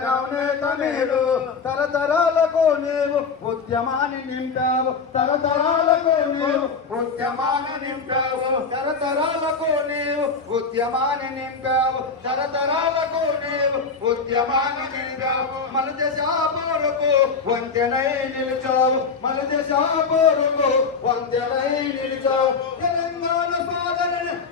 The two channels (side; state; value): right; quieter; 5.0 dB